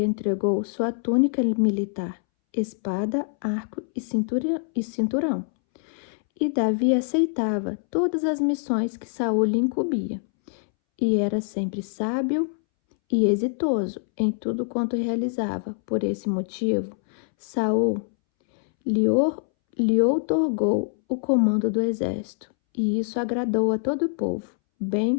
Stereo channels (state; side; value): silent; right; 62 dB below the other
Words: entregou sua túnica militar, espada, arco e cinturão. E Davi aceitava todas as missões que Saul lhe incumbia, e era sempre sábio e exitoso em tudo quanto realizava. Por esse motivo, Saul lhe outorgou o comando do exército, e isso agradou a todo o povo,